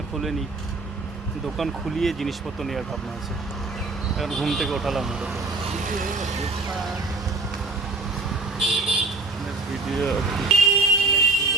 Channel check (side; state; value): left; quieter; 3.5 dB